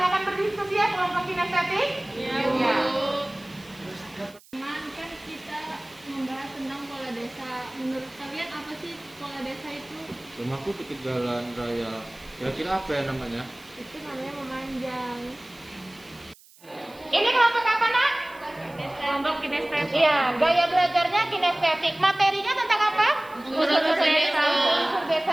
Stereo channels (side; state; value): right; noise; hiss, 25 dB below the sound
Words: berdiskusi ya kelompok kinestetik. Iya. Teman, kan kita membahas tentang pola desa. Menurut kalian apa sih pola desa itu? Rumahku dekat jalan raya. Kira-kira apa ya namanya? Itu namanya memanjang. Ini kelompok apa, Nak? Kelompok kinestetik. Iya, gaya belajarnya kinestetik. Materinya tentang apa? Unsur desa. Unsur desa.